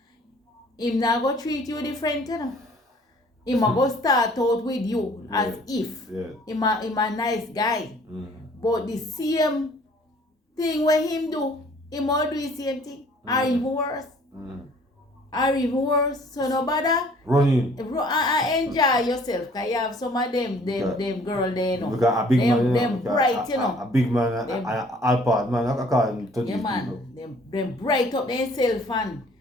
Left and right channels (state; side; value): normal; both; correlation 0.56